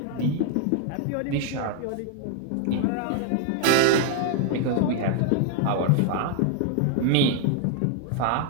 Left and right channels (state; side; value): different; both; correlation 0.00